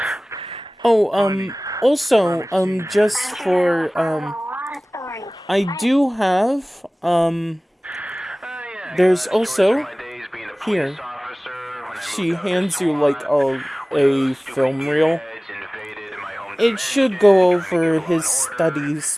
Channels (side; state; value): both; normal; correlation 0.98